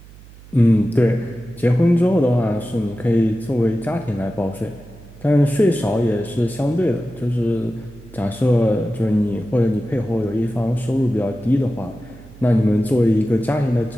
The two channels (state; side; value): noise; right; hum, 21 dB below the sound